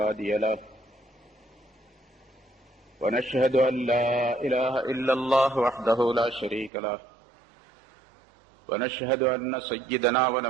له ونشهد أن لا إله إلا الله وحده لا شريك له ونشهد أن سيدنا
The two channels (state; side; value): drops out; left; at 6.7 s